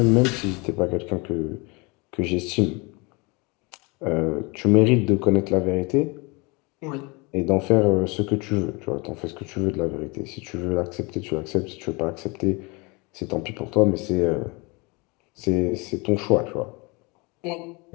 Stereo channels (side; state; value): right; quieter; 27.8 dB